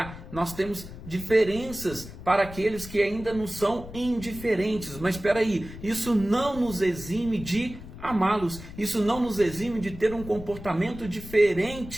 Nós temos diferenças para aqueles que ainda não são indiferentes. Mas espera aí, isso não nos exime de amá-los, isso não nos exime de ter um comportamento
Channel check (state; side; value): noise; left; rumble, 13 dB below the sound